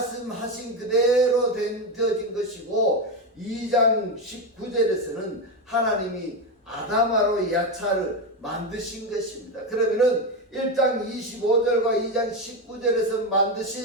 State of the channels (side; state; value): both; normal; correlation 0.13